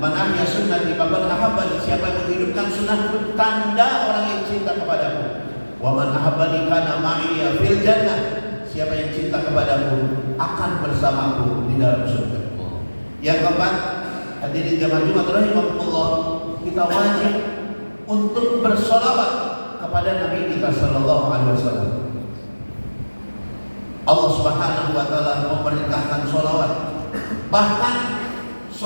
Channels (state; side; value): inverted; both; correlation -1.00